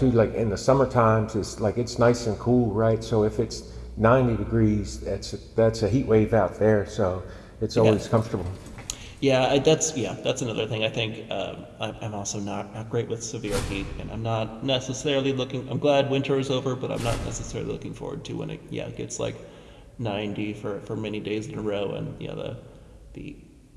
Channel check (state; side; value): identical; both; correlation 1.00